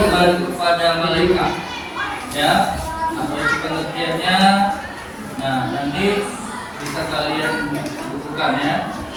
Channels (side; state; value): both; identical; correlation 1.00